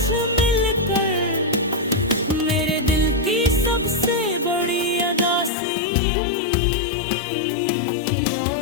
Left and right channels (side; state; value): right; drops out; at 5.5 s